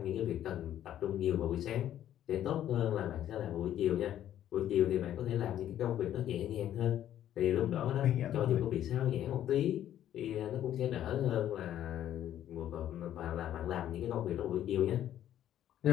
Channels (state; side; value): quieter; right; 11.4 dB